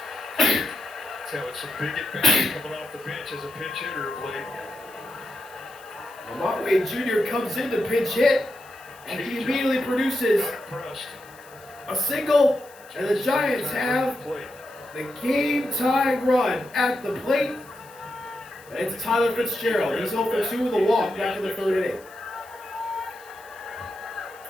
That's how it's a big advantage coming off the bench as a pinch hitter of late. Lamont Wade Jr. comes in to pinch hit, and he immediately produces a single, and the Giants have the game-tying run at the plate. And it's Tyler Fitzgerald. He's 0 for 2 with a walk back in the third inning.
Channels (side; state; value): left; noise; hiss, 24 dB below the sound